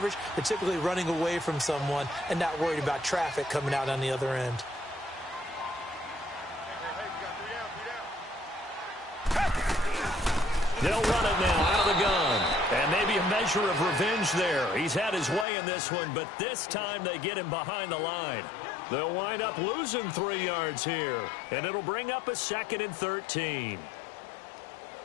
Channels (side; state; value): right; drops out; at 15.5 s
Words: they're typically running away from someone and not worried about traffic coming out on the other end. They'll run it now out of the gun. And maybe a measure of revenge there. He's had his way in this one, but this time they get him behind the line. They'll wind up losing 3 yards here. And it'll bring up a 2nd and 13.